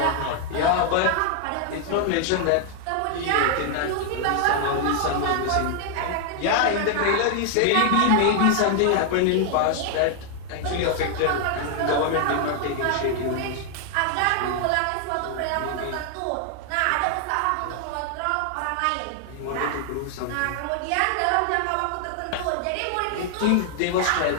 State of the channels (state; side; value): different; both; correlation 0.00